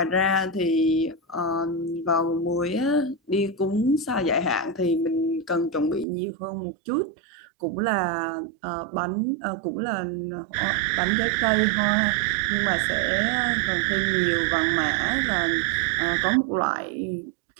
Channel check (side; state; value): left; drops out; at 6.1 s